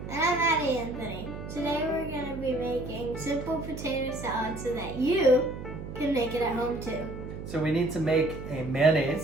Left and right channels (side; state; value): right; noise; hum, 9 dB below the sound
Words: And I'm Addie Anthony. Today we're going to be making simple potato salad so that you can make it at home too. So we need to make a